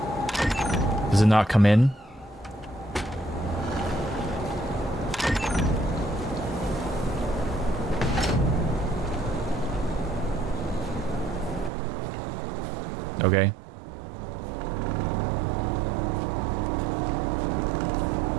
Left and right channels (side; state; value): left; drops out; at 11.7 s